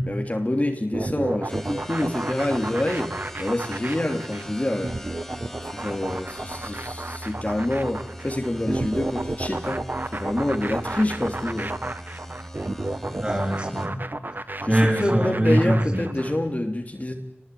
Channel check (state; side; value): normal; both; correlation 0.95